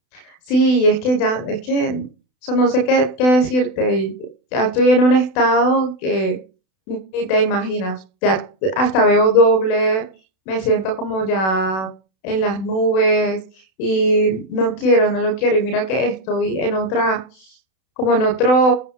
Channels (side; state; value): right; late; 32 ms